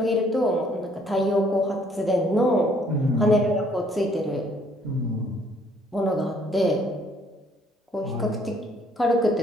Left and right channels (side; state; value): both; normal; correlation 0.63